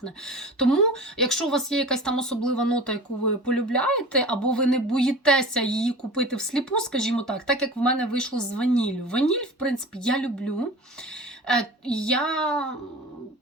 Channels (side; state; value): both; normal; correlation 0.37